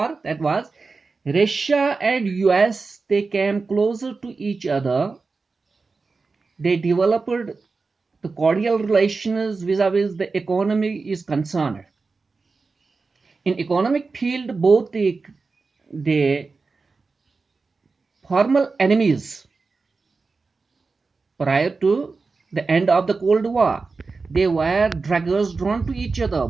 that was Russia and US, they came closer to each other. They developed the cordial relations vis-a-vis the economy is concerned. In economic field, both the formal enemies prior to the end of the Cold War, they were daggers drawn to each other.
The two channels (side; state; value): left; quieter; 4.2 dB